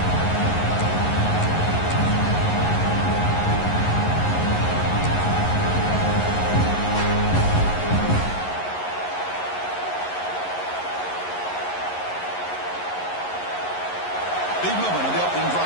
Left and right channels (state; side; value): late; right; 11 ms